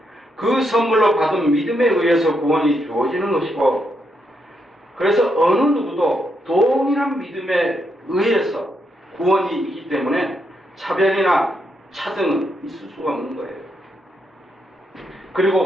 그 선물로 받은 믿음에 의해서 구원이 주어지는 것이고 그래서 어느 누구도 동일한 믿음에 의해서 구원이 있기 때문에 차별이나 차등은 있을 수가 없는 거예요.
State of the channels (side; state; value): both; normal; correlation 0.79